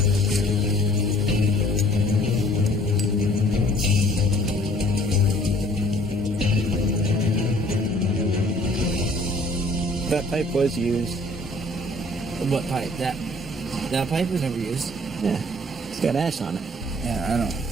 That pipe was used. What pipe? That pipe was never used. Yeah, it's got ash on it. Yeah,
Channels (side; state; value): both; normal; correlation 0.55